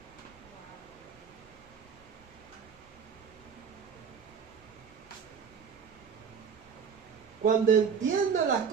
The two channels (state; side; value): quieter; left; 6.6 dB